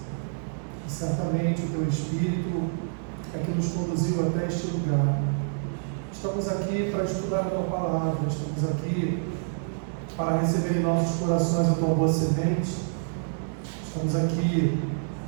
E certamente o teu Espírito é que nos conduziu até este lugar. Estamos aqui para estudar a tua palavra, estamos aqui para receber em nossos corações a tua boa semente. Estamos aqui,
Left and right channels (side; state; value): left; silent; digital silence